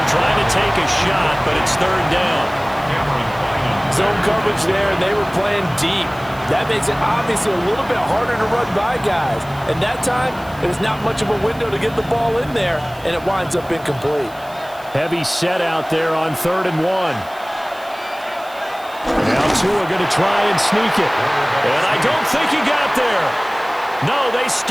trying to take a shot, but it's 3rd down. Zone coverage there, and they were playing deep. That makes it obviously a little bit harder to run by guys. And that time, there's not much of a window to get the ball in there, and it winds up incomplete. Heavy set out there on 3rd and 1. Now Tua going to try and sneak it. And I don't think he got there. No, they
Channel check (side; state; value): right; noise; hiss, 23 dB below the sound